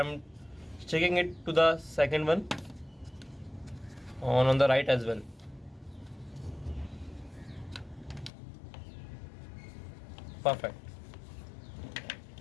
sticking it to the second one on the right as well. Perfect.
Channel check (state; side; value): drops out; right; at 8.3 s